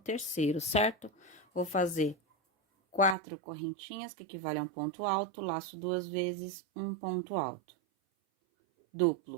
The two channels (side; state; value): left; drops out; at 3.2 s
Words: certo? Vou fazer 4 correntinhas, que equivale a um ponto alto, laço 2 vezes, um ponto alto.